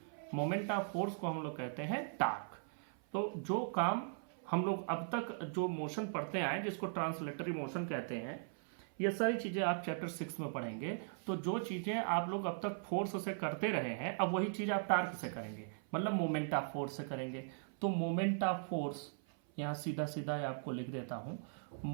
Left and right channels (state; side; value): silent; left; 52 dB below the other